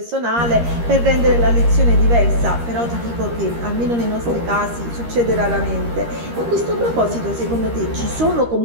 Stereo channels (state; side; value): late; left; 13 ms